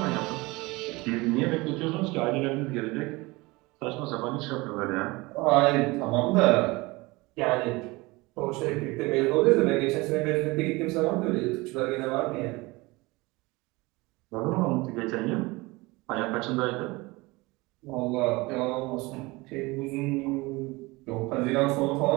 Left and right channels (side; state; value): left; quieter; 23.1 dB